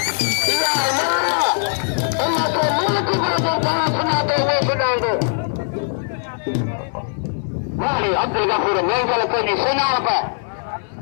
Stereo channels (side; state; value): right; silent; 65 dB below the other